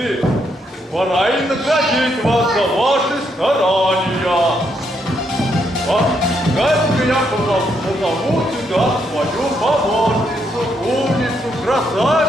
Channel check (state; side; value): normal; both; correlation 0.76